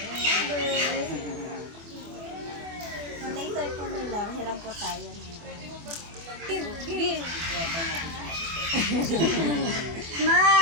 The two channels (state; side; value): late; left; 24 ms